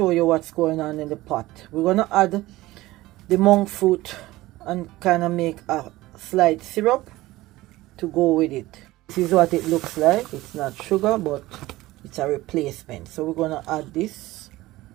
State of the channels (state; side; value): quieter; left; 18.0 dB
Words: you what's going on in the pot. We're gonna add the monk fruit and kind of make a slight syrup to go with it. This is what it looks like. It's not sugar, but it's a replacement. So we're gonna add this